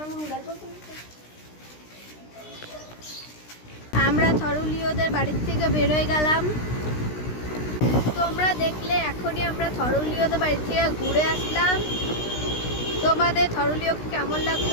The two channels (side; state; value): right; late; 16 ms